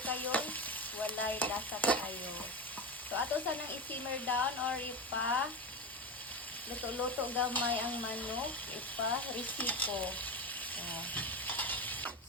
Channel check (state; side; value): normal; both; correlation 0.20